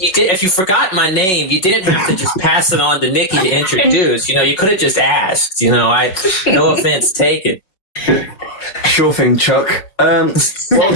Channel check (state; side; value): late; right; 5.3 ms